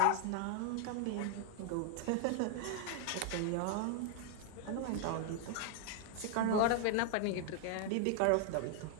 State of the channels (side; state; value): both; different; correlation 0.00